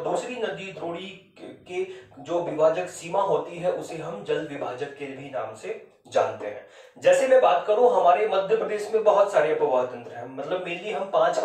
दूसरी नदी द्रोणी के जो विभाजक सीमा होती है उसे हम जल विभाजक के भी नाम से जानते हैं। जैसे मैं बात करूं, हमारे मध्य प्रदेश में बहुत सारे अपवाह तंत्र हैं, मतलब मेनली हम 5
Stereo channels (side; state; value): both; identical; correlation 1.00